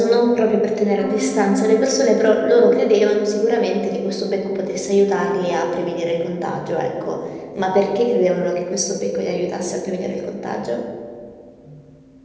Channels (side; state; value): both; identical; correlation 1.00